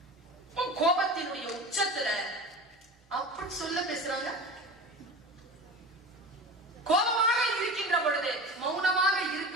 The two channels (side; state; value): both; normal; correlation 0.33